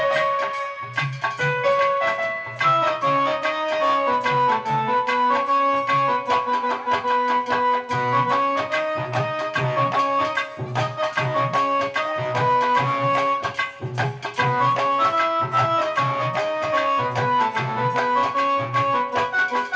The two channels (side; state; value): both; identical; correlation 1.00